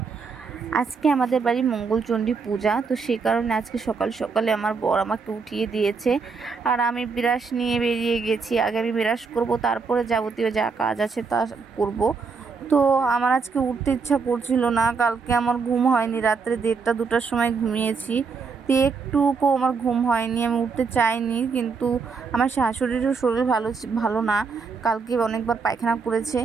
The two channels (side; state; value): left; quieter; 5.0 dB